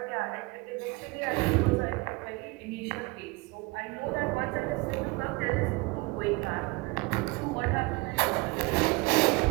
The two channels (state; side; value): quieter; left; 25.3 dB